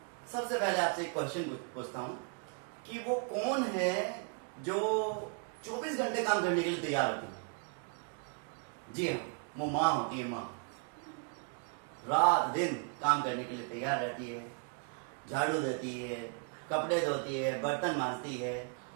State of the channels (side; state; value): left; quieter; 39.6 dB